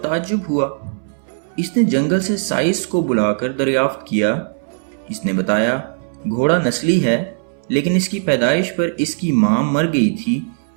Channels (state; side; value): silent; left; 64 dB below the other